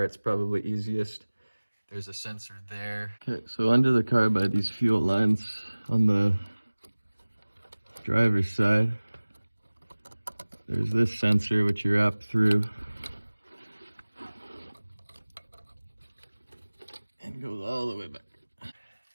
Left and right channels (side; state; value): both; inverted; correlation -1.00